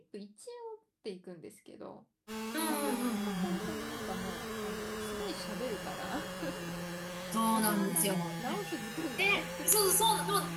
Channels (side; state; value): both; identical; correlation 1.00